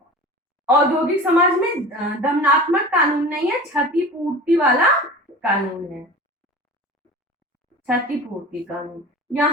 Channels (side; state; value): both; normal; correlation 0.35